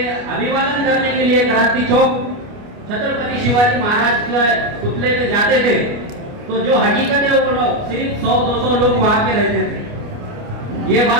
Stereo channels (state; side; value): late; left; 29 ms